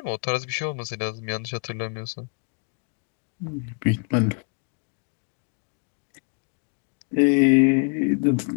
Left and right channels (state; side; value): quieter; right; 38.2 dB